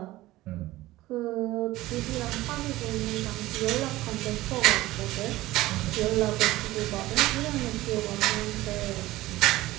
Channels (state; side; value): quieter; left; 17.4 dB